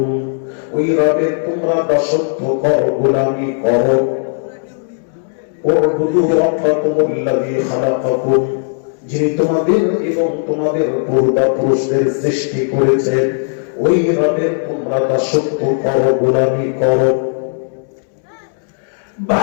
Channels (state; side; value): silent; right; 69 dB below the other